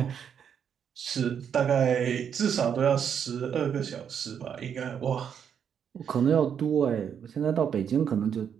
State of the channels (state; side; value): quieter; left; 7.9 dB